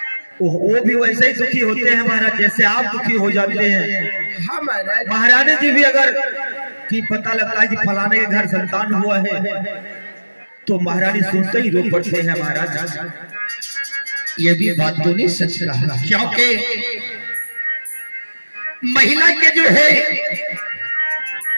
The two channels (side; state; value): both; inverted; correlation -1.00